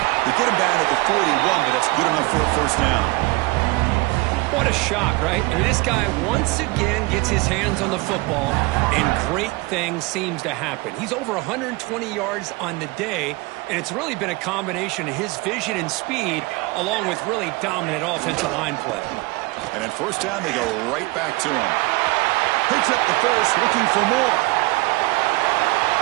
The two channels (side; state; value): left; quieter; 23.6 dB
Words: get him down at the 41, but that's good enough for a first down. What a shock, right? I mean, this guy once again gets his hands on the football, and great things seems to happen. He's over 120 yards on the day, and it's really been a combination of his vision and speed, along with really dominant offensive line play. And in first down, they go right back to him. Picks up the first, looking for more.